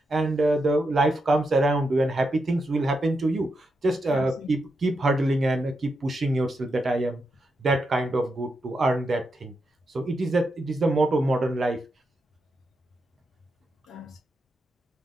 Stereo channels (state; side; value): normal; both; correlation 0.85